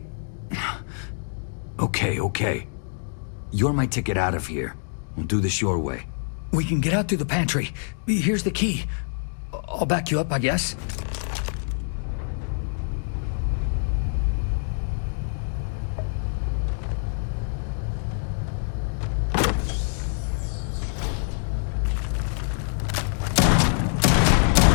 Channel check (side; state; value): right; silent; 61 dB below the other